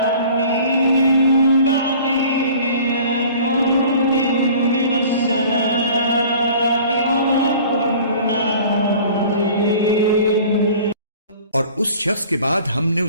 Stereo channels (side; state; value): both; inverted; correlation -0.47